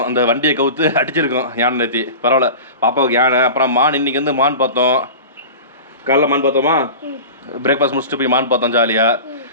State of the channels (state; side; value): inverted; both; correlation -0.33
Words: அந்த வண்டியை கவுத்து அடிச்சிருக்கோம் யானை நேற்று. பரவாயில்ல பாப்பாவுக்கு யானை. அப்புறம் மான். இன்னைக்கு வந்து மான் பார்த்தோம். காலைல மான் பார்த்தோமா? பிரேக்ஃபாஸ்ட் முடிச்சுட்டு போய் மான் பார்த்தோம் ஜாலியாக.